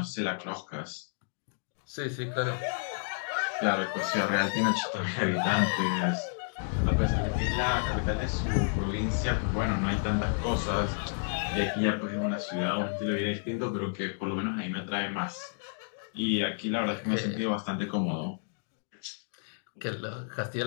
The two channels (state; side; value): silent; right; digital silence